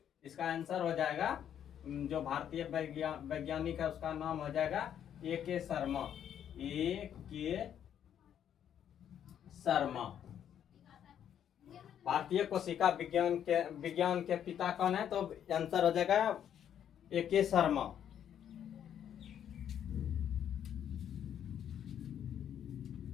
इसका आंसर हो जाएगा, जो भारतीय वैज्ञानिक है उसका नाम हो जाएगा ए के शर्मा। ए के शर्मा। भारतीय कोशिका विज्ञान के पिता कौन है? तो आंसर हो जाएगा ए के शर्मा।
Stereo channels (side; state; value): right; quieter; 9.6 dB